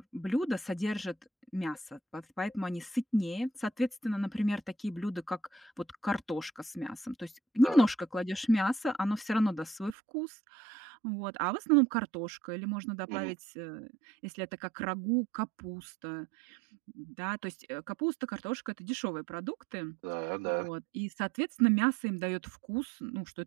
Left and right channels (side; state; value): left; drops out; at 10.0 s